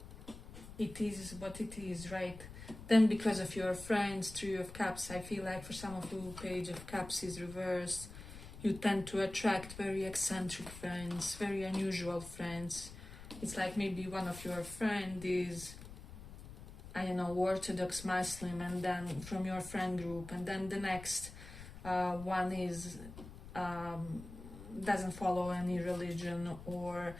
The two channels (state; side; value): noise; left; rumble, 14 dB below the sound